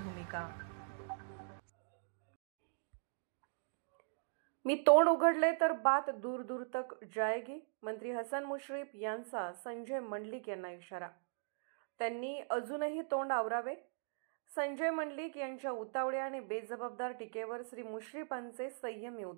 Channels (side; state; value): left; silent; digital silence